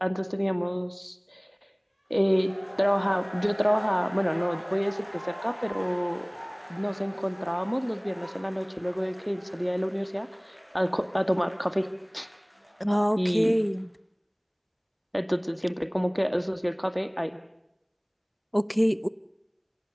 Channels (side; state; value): both; identical; correlation 1.00